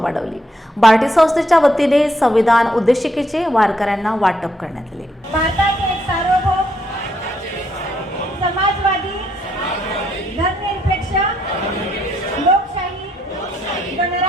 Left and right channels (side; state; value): both; normal; correlation 0.74